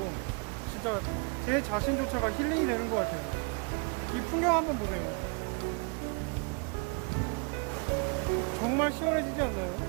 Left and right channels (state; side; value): quieter; left; 34.3 dB